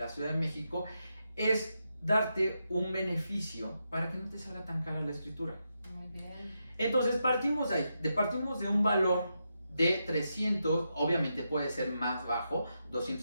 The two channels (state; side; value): inverted; both; correlation -0.85